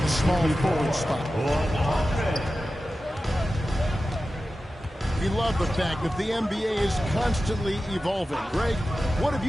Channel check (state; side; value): normal; both; correlation 0.94